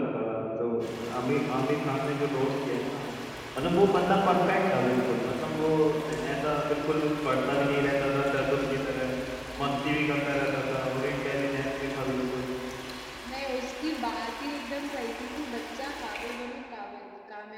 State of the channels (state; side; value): identical; both; correlation 1.00